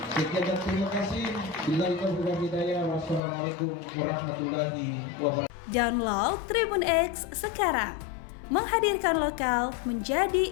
Sekian dan terima kasih. Billahi taufiq wal hidayah. Wassalamualaikum warahmatullahi wabarakatuh. Download Tribun X sekarang, menghadirkan lokal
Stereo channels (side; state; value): right; drops out; at 3.2 s